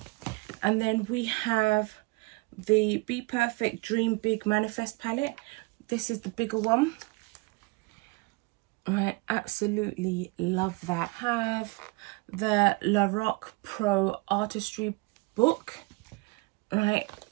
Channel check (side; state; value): left; quieter; 25.7 dB